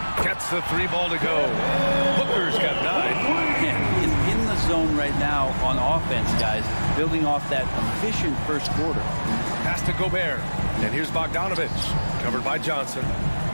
gets the 3 ball to go. Booker's got 9. Yeah, he's in the zone right now on offense, guys, building off that efficient first quarter. Pass to Gobert, and here's Bogdanovich, covered by Johnson.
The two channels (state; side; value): inverted; both; correlation -1.00